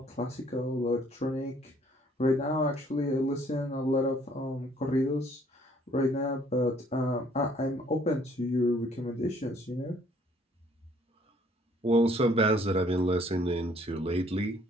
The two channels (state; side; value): normal; both; correlation 0.61